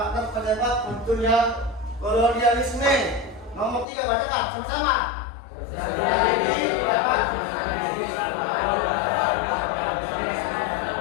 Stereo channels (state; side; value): drops out; right; at 3.9 s